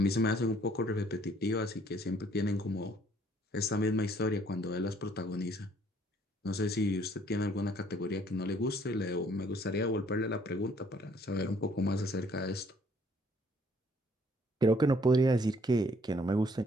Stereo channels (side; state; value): both; normal; correlation 0.63